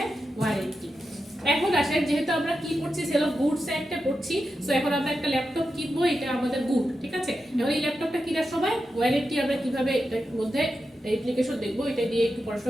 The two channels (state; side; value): normal; both; correlation 0.89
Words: ওয়ারেন্টি। এখন আসেন, যেহেতু আমরা কি পড়ছি, সেল অফ গুডস একটা পড়ছি, সো এখন আমরা একটা ল্যাপটপ কিনবো, এটা আমাদের গুড, ঠিক আছে? এখন এই ল্যাপটপটা কেনার সময় ওয়ারেন্টি আমরা কিভাবে এটার মধ্যে অ্যাপ্লিকেশন দেখবো, এটা দিয়ে একটু